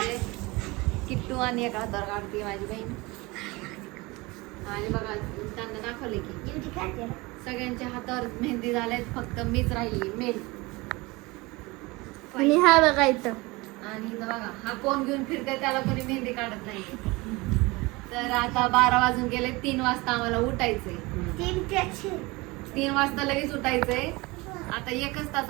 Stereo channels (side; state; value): left; quieter; 23.4 dB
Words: किट्टू आणि एका हातावर काढते माझी बहीण. आणि बघा त्यांना दाखवले की सगळ्यांच्या हातावर मेहंदी झाल्यात, फक्त मीच राहिली मेन. आणि हा बघा इथं. आणि इथं बघा हा कोण घेऊन फिरते, त्याला कोणी मेहंदी काढत नाही. तर आता 12 वाजून गेले. 3 वाजता आम्हाला उठायचंय. 3 वाजता लगेच उठायचंय. आता 1च तास